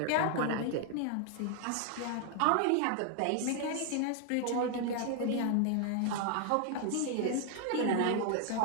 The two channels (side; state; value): both; different; correlation 0.00